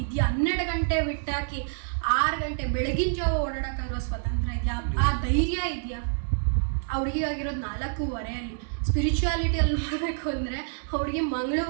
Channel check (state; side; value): silent; left; 60 dB below the other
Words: ಇದೆಯಾ? 12 ಗಂಟೆ ಬಿಟ್ಟಾಕಿ 6 ಗಂಟೆ ಬೆಳಗಿನ ಜಾವ ಓಡಾಡೋಕ್ಕಾಗಿರೋ ಸ್ವತಂತ್ರ ಇದೆಯಾ? ಆ ಧೈರ್ಯ ಇದೆಯಾ? ಅವ್ರಿಗಾಗಿರೋದು 4:15 ಸ್ಪಿರಿಚುವಾಲಿಟಿಯಲ್ಲಿ ನೋಡಬೇಕು ಅಂದರೆ ಅವ್ರಿಗೆ